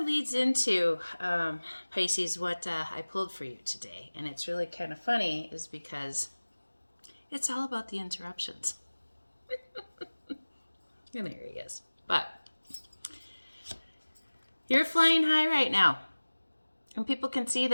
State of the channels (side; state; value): both; inverted; correlation -1.00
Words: leads into, Pisces, what I pulled for you today. And it's really kind of funny is because it's all about the interruptions. And there he is. But you're flying high right now. And people can see